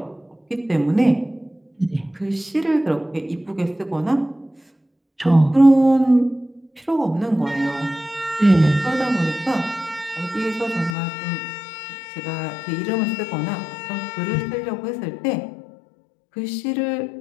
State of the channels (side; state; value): right; drops out; at 11.0 s